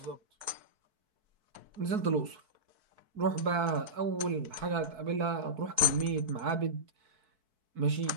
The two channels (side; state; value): left; late; 4.6 ms